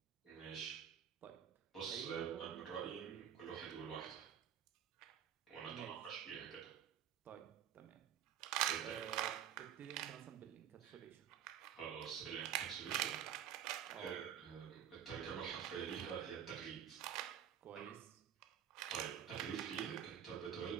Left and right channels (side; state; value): left; quieter; 9.6 dB